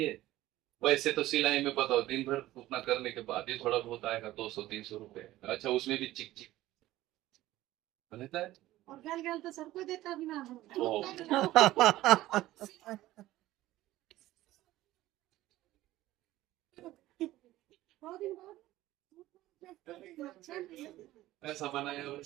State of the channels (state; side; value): quieter; left; 15.8 dB